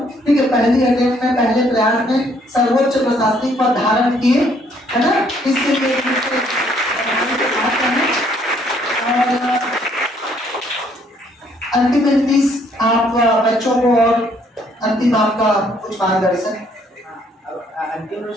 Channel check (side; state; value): both; normal; correlation 0.66